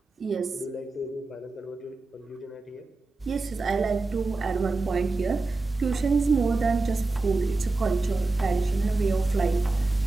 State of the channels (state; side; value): quieter; left; 3.4 dB